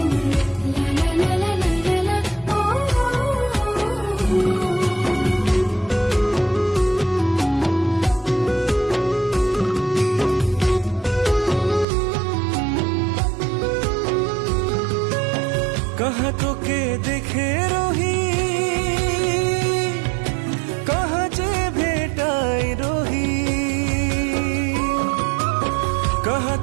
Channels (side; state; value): left; drops out; at 11.9 s